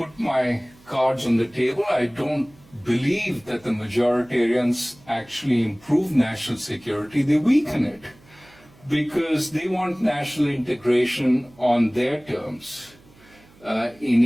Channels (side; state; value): right; noise; hum, 27 dB below the sound